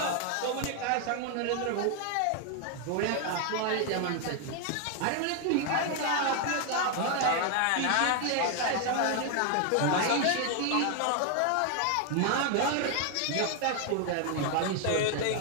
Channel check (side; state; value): both; different; correlation 0.00